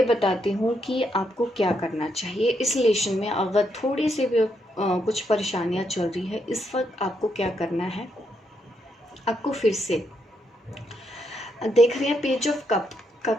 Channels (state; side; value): normal; both; correlation 0.79